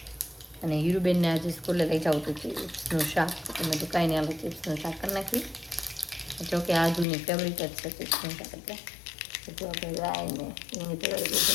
અને હીરુબેનને આજે સ્કૂલે લઈ જાઉં હતું ચિપ્સનું શાક. તમે તો કાંઈ નહીં, આપણે ચિપ્સનું શાક કરી નાખી. જો કે આજુની ફેવરિટ જ છે ચિપ્સનું શાક. એટલે જો આપણે રાઈને એની તૈયારી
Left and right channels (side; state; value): right; drops out; at 7.1 s